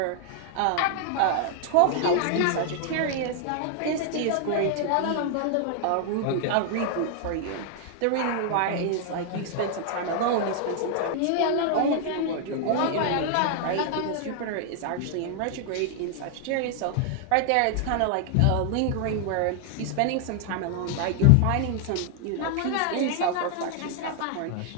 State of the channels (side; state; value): both; different; correlation 0.00